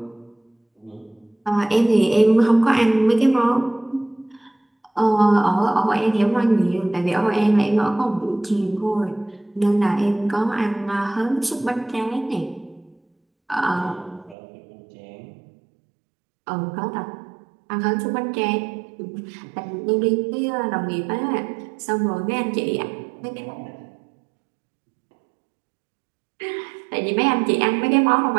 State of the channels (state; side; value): drops out; left; at 14.4 s